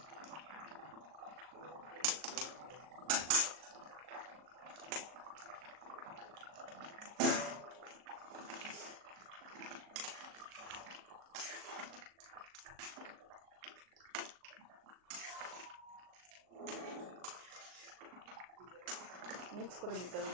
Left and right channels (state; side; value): late; left; 38 ms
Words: মিক্স করে দিতে হবে